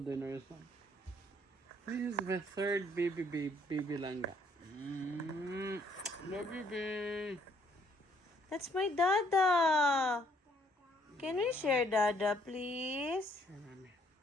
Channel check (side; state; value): both; normal; correlation 0.65